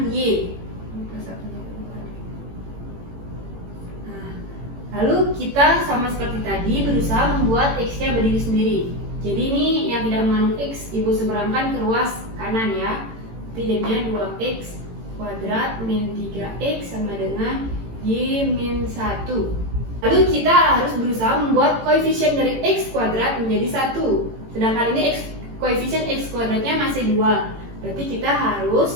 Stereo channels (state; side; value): late; left; 18 ms